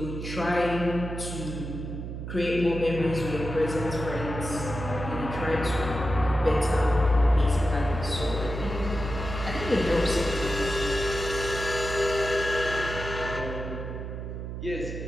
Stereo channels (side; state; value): right; noise; hum, 7 dB below the sound